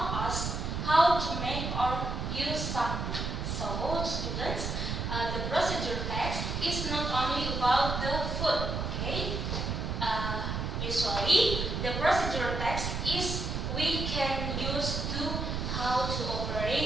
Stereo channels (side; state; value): right; noise; rumble, 2 dB below the sound